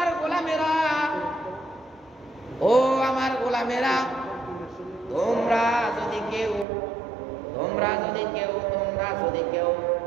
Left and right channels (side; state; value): left; drops out; at 6.7 s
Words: গোলামেরা, ও আমার গোলামেরা, তোমরা যদি কেউ তোমরা যদি কেউ